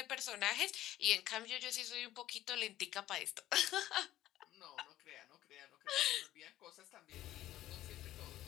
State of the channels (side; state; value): right; quieter; 14.0 dB